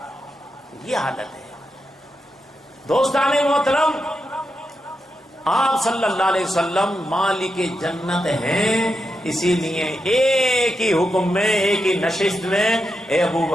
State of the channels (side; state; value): both; normal; correlation 0.86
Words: یہ حالت ہے دوستان محترم۔ آپ صلی اللہ علیہ وسلم مالک جنت ہیں، اسی لیے ایک ہی حکم میں، ایک ہی نشست میں، اے ابو